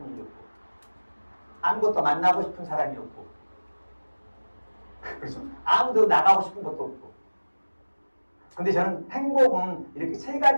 일이 없고 아무것도 만나고 싶은 사람이 없고 그래서 아무도 나가고 싶은 것도 없고 근데 저는 행복은 이렇게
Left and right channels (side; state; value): both; inverted; correlation -1.00